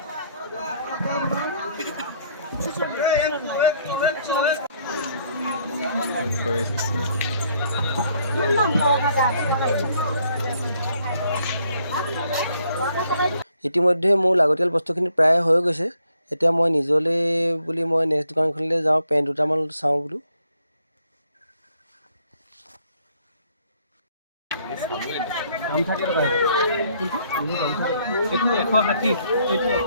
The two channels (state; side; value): inverted; both; correlation -0.68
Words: ইতিমধ্যে মোৰ লাগতিয়াল বস্তুখিনি প্ৰায় হৈ গৈছে। এতিয়া মই নিজলৈ বুলি মই নেক্সট দোকানখনলৈ যাওঁ, পেণ্ট দুটামান চাওঁ বোলো। দাম থাকে টকা এইটো 160, এইটো